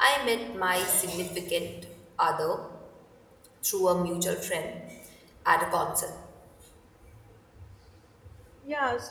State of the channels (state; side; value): identical; both; correlation 1.00